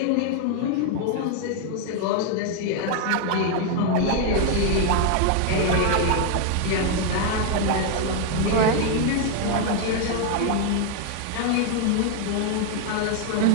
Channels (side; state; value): both; different; correlation 0.00